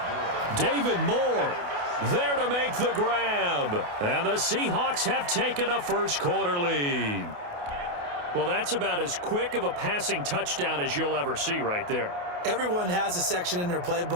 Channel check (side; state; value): left; late; 28 ms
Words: David Moore there to make the grab. And the Seahawks have taken a first-quarter lead. Well, that's about as quick of a passing touchdown as you'll ever see right there. Everyone has a section in their